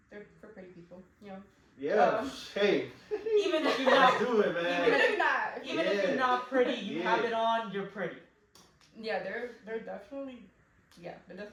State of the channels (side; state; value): both; identical; correlation 1.00